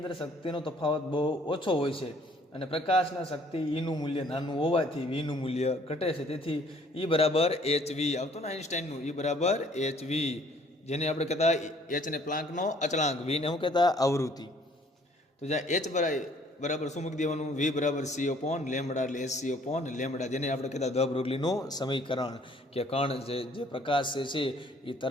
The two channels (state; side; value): normal; both; correlation 0.59